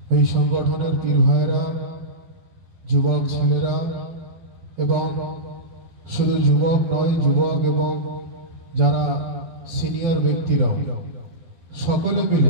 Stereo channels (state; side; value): late; left; 12 ms